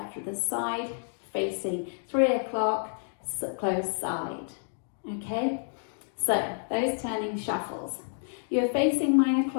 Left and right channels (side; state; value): right; silent; digital silence